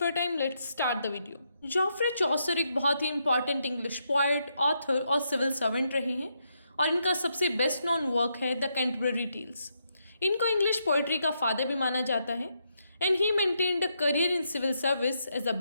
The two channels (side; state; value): both; inverted; correlation -0.80